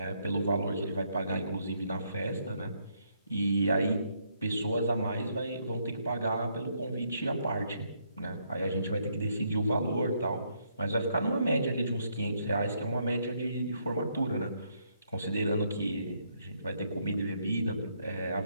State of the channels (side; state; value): both; inverted; correlation -0.74